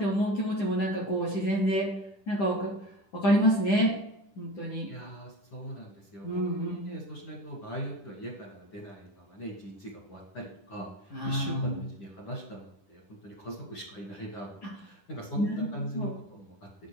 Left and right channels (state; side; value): late; right; 10 ms